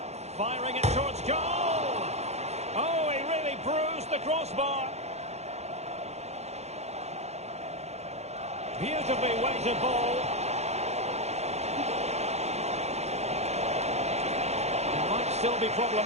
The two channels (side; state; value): left; late; 0.31 ms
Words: Firing it towards goal! Oh, he really bruised the crossbar. Beautifully weighted ball. It might still be